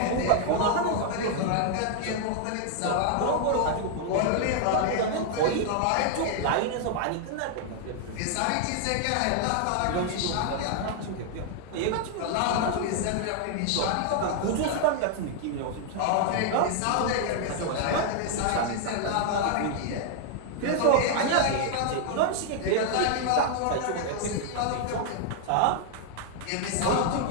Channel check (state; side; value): different; both; correlation 0.00